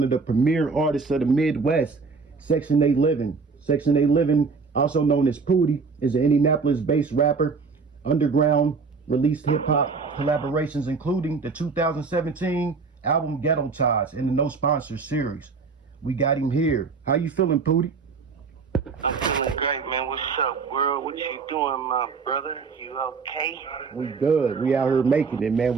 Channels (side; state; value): left; quieter; 4.8 dB